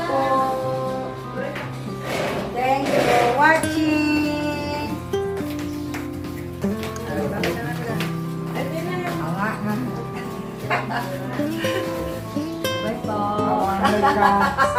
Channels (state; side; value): identical; both; correlation 1.00